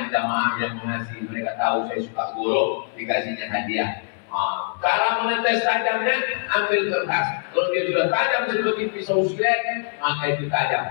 jamaah yang mengasihi, mereka tahu saya suka golok, dikasihnya hadiah. Cara menetes tajamnya, ambil kertas. Kalau dia sudah tajam seperti pisau silet, maka itu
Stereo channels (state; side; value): silent; right; 62 dB below the other